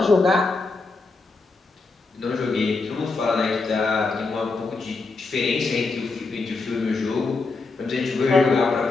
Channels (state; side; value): quieter; right; 3.9 dB